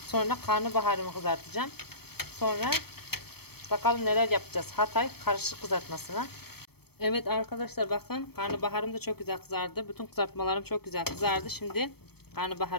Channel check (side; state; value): right; late; 0.97 ms